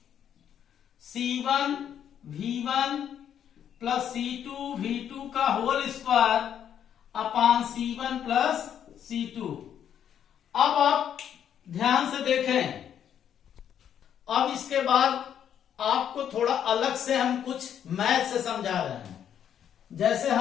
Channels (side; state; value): right; quieter; 9.3 dB